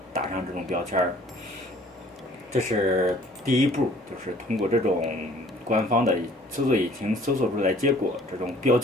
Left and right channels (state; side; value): normal; both; correlation 0.54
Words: 打上这种标签儿。这是第一步，就是通过这种官方的搜索引擎搜索出来结果这种标